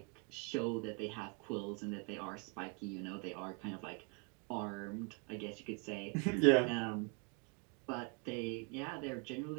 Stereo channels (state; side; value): quieter; left; 34.2 dB